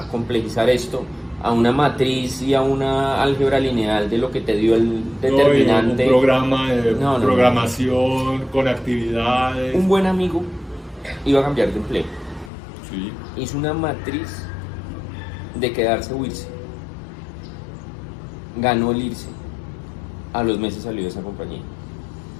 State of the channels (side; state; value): right; drops out; at 12.5 s